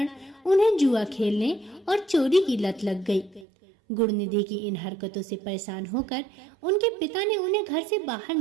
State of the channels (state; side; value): drops out; left; at 3.5 s